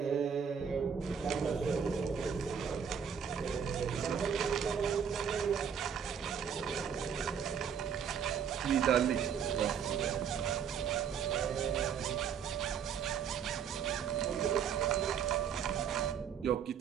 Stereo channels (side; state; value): left; quieter; 7.5 dB